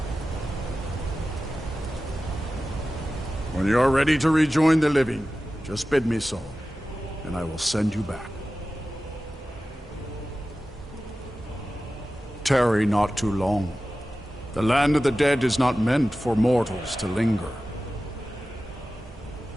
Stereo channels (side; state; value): both; normal; correlation 0.95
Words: When you are ready to rejoin the living, just bid me so, and I will send you back. Tarry not too long. The land of the dead is not meant for mortals to linger.